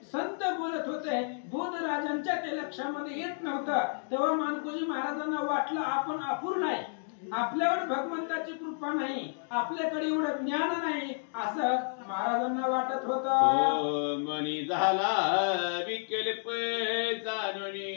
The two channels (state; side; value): silent; right; digital silence